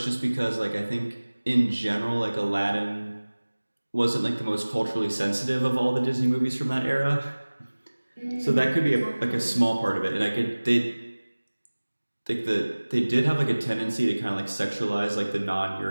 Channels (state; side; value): inverted; both; correlation -1.00